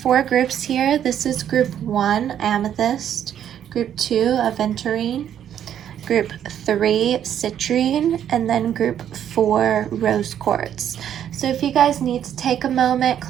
groups here. This is group 1, Amethyst. Group 2, Aventurine, Group 3, Citrine, and then Group 4, Rose Quartz. So if you guys need to take a moment,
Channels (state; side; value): quieter; left; 9.9 dB